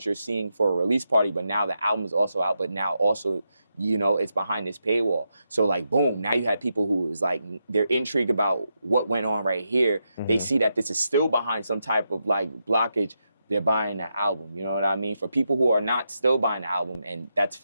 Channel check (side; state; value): both; inverted; correlation -0.85